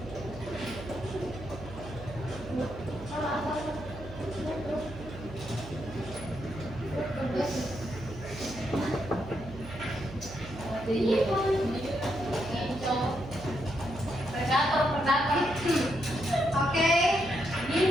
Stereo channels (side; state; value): right; noise; hum, 13 dB below the sound